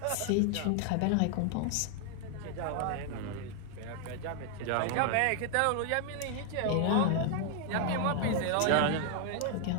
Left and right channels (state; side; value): different; both; correlation 0.00